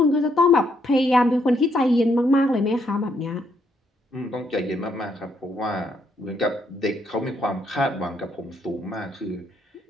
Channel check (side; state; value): both; normal; correlation 0.73